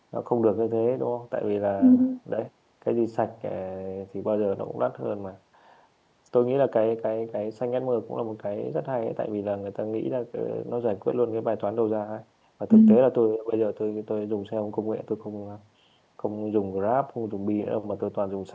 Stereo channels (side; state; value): both; identical; correlation 1.00